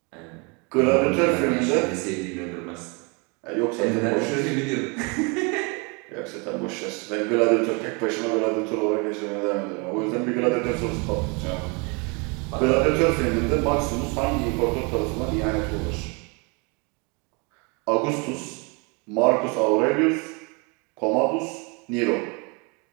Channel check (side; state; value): left; quieter; 31.4 dB